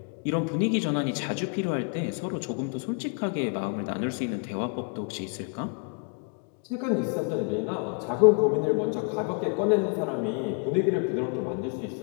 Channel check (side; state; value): right; quieter; 36.9 dB